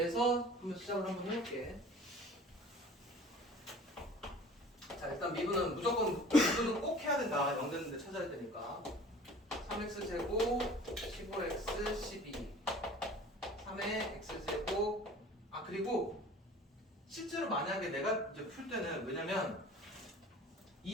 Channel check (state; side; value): normal; both; correlation 0.45